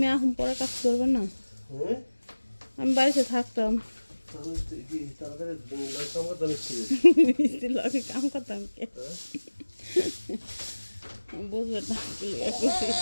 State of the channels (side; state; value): both; inverted; correlation -1.00